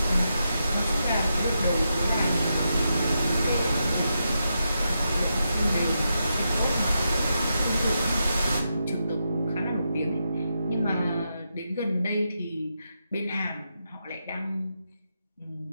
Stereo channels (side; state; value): both; inverted; correlation -0.85